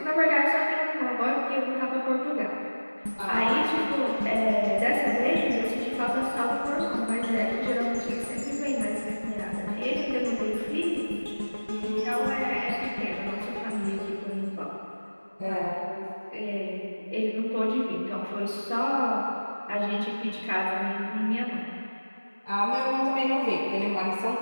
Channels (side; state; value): both; inverted; correlation -1.00